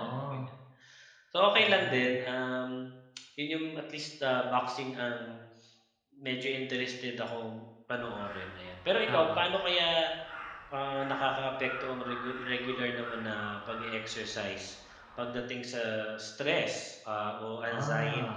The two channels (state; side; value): identical; both; correlation 1.00